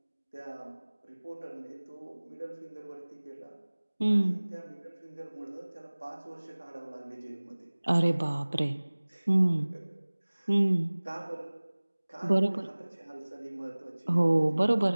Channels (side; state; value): both; inverted; correlation -1.00